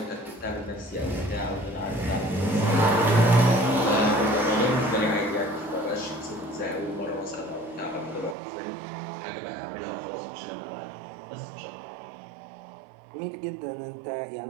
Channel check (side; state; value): left; drops out; at 8.3 s